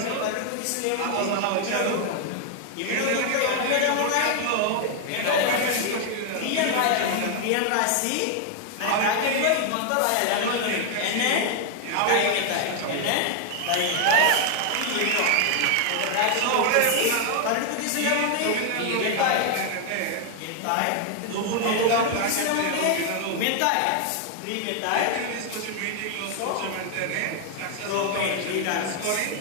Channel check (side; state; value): both; different; correlation 0.00